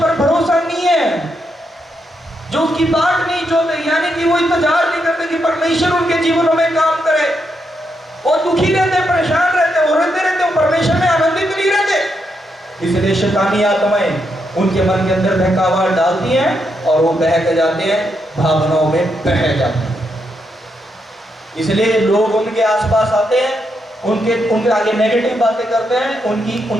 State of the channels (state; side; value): normal; both; correlation 0.81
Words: भरोसा नहीं है, जो उसकी बात नहीं जोते, यानी कि वो इंतजार नहीं करते कि परमेश्वर उनके जीवनों में काम करे। वो दुखी रहते, परेशान रहते, वो रोते रहते, वो परमेश्वर में आनंदित नहीं रहते। इसलिए शैतानी आत्माएं उनके मन के अंदर बहकावा डालती हैं और वो बहक जाते हैं, भावनाओं में बह जाते हैं। इसलिए लोग उनके आसपास आते हैं, उनके आगे नेगेटिव बातें करते हैं,